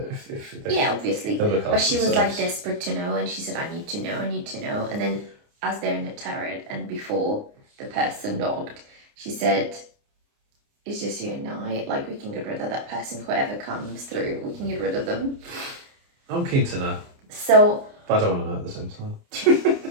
if they, yeah, obviously, but she was like desperate to know, and she said, I need to know, and then as they're in the turret and before the person knocked, she said, it's just you and I, like, we can get rid of that person, whoever comes through, we can get rid of them. I'm keen to know. So, but I don't want to know at the same time.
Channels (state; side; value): late; left; 29 ms